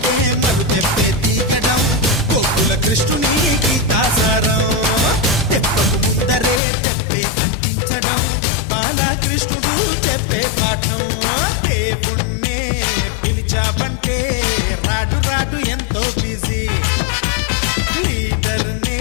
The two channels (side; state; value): right; drops out; at 6.6 s